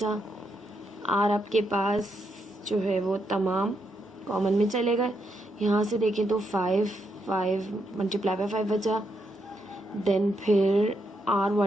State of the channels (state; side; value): normal; both; correlation 0.80